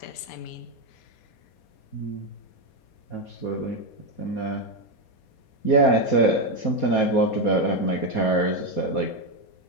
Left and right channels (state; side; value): late; right; 4.2 ms